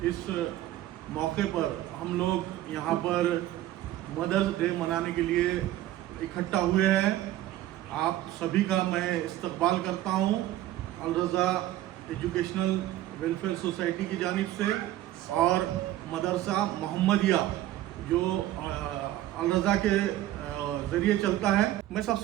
इस मौके पर हम लोग यहाँ पर मदर्स डे मनाने के लिए इकट्ठा हुए हैं। आप सभी का मैं इस्तकबाल करता हूँ अल रज़ा एजुकेशनल वेलफेयर सोसाइटी की जानिब से और मदरसा मोहम्मदिया जो अल रज़ा के ज़रिए चलता है। मैं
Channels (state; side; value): quieter; left; 14.3 dB